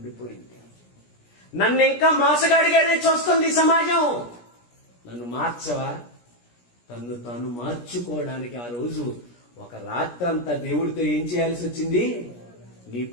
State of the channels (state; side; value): late; right; 17 ms